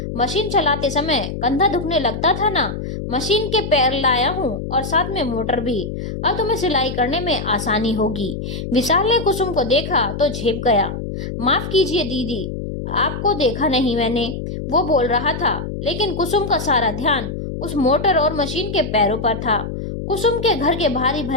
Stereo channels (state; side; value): noise; left; hum, 6 dB below the sound